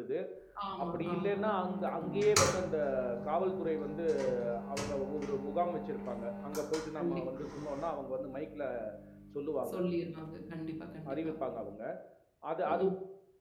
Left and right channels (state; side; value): identical; both; correlation 1.00